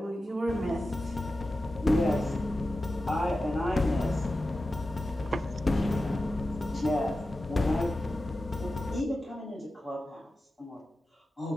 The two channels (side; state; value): both; normal; correlation 0.93